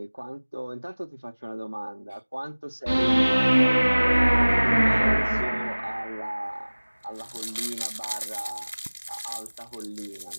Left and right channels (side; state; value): both; inverted; correlation -1.00